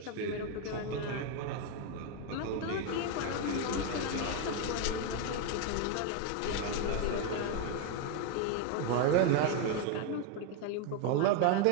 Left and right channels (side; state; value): both; different; correlation 0.01